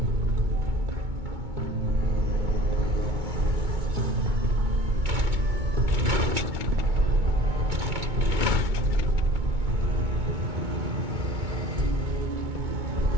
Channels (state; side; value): late; left; 2.2 ms